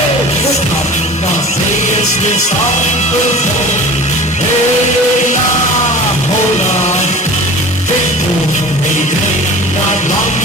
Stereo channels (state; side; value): normal; both; correlation 0.39